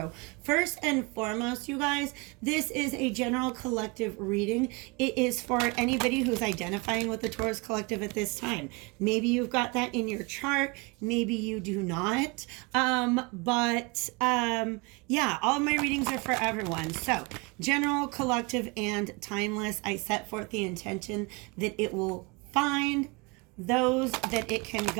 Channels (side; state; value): left; quieter; 28.5 dB